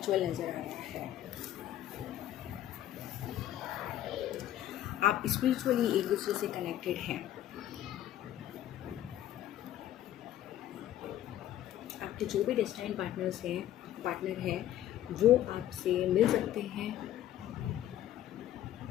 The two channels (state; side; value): quieter; right; 12.5 dB